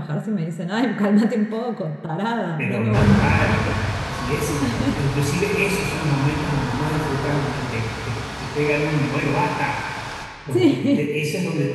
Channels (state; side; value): identical; both; correlation 1.00